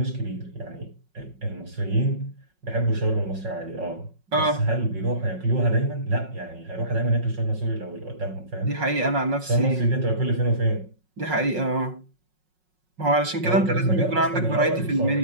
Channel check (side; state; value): left; late; 5.5 ms